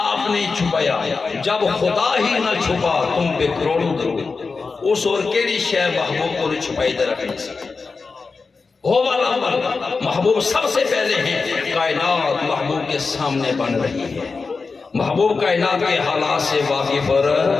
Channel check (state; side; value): quieter; right; 4.4 dB